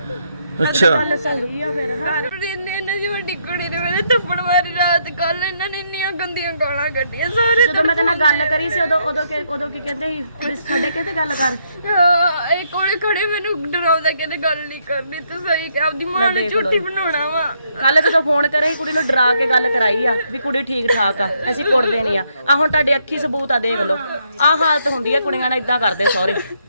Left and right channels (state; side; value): inverted; both; correlation -0.74